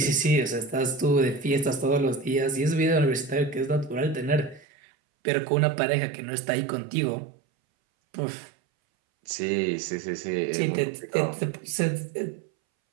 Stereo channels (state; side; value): drops out; left; at 4.7 s